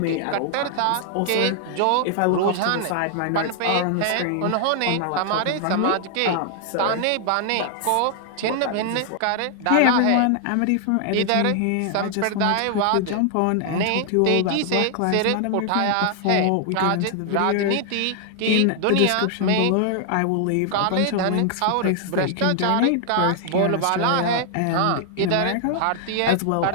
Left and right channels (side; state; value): both; different; correlation 0.00